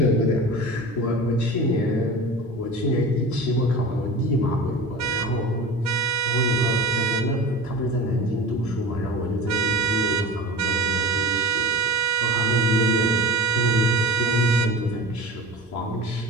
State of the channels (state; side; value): normal; both; correlation 0.33